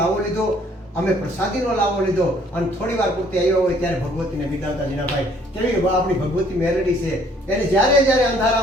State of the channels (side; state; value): both; normal; correlation 0.61